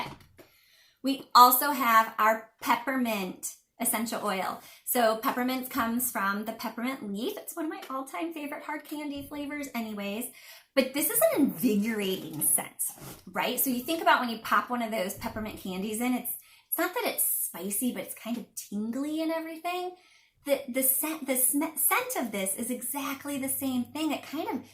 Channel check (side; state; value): both; identical; correlation 1.00